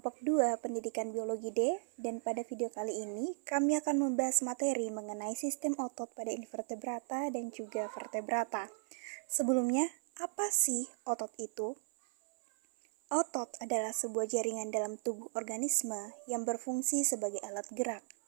2 Pendidikan Biologi D, dan pada video kali ini kami akan membahas materi mengenai sistem otot pada invertebrata dan juga vertebrata. Sebelumnya, apa sih otot itu? Otot adalah sebuah jaringan dalam tubuh organisme yang berfungsi sebagai alat gerak.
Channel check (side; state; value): left; silent; 54 dB below the other